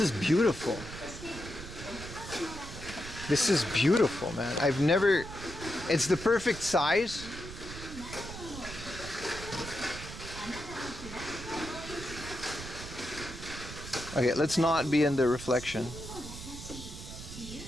beautiful. This is beautiful, man. I've never... It's the perfect size. Okay, let's not be in the reflection.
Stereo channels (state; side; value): noise; right; rumble, 11 dB below the sound